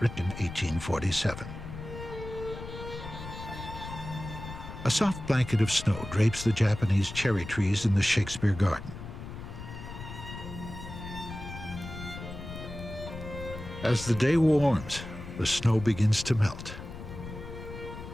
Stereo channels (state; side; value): noise; left; rumble, 11 dB below the sound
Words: written 1847. A soft blanket of snow drapes the Japanese cherry trees in the Shakespeare Garden. As the day warms, the snow begins to melt.